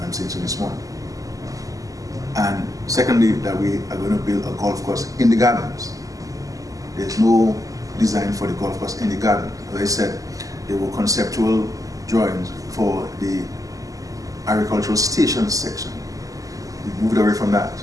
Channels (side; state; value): left; late; 0.17 ms